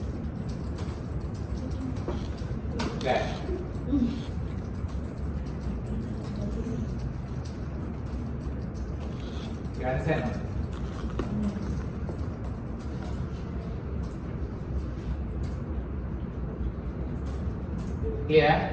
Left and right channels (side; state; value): both; identical; correlation 1.00